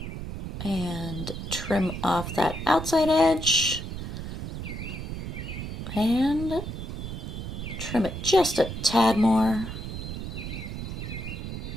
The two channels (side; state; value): right; noise; rumble, 6 dB below the sound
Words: And trim off that outside edge. And trim it just a tad more.